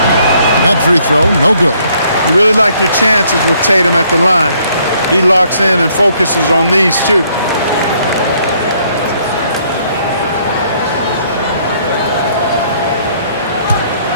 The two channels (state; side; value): inverted; both; correlation -0.66